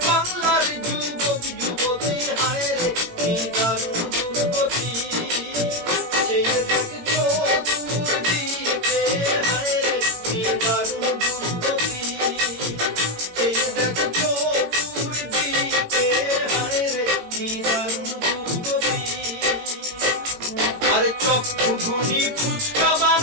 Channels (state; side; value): late; left; 17 ms